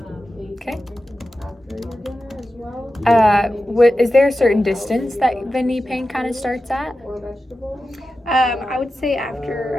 Okay. Is there a certain distance that the knee pain kind of starts at? I would say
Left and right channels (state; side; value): normal; both; correlation 0.92